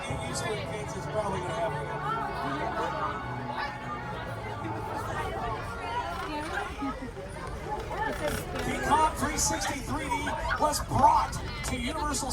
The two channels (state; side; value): identical; both; correlation 1.00